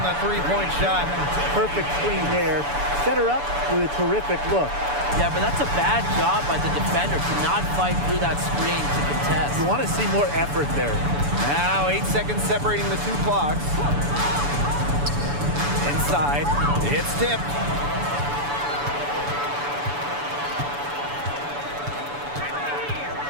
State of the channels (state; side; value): late; left; 7.0 ms